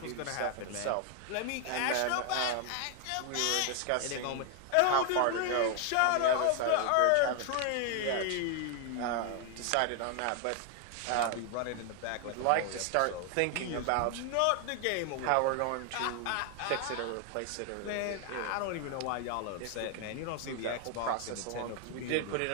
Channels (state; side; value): different; both; correlation 0.00